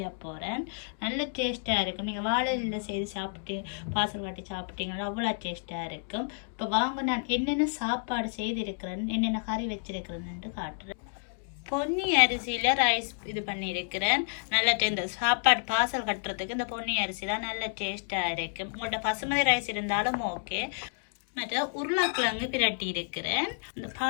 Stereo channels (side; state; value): right; silent; digital silence